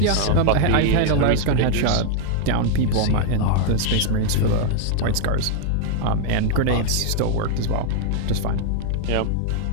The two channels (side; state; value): both; different; correlation -0.01